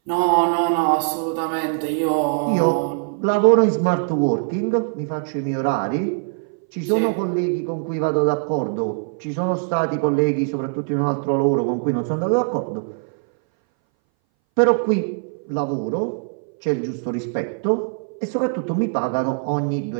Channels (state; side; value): silent; left; 61 dB below the other